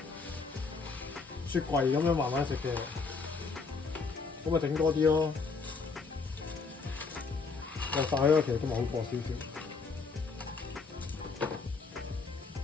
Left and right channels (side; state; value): right; quieter; 4.6 dB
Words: 雪櫃咁樣慢慢食嘅，咁咪整多啲咯。落晒咯，其實都咪好過少少。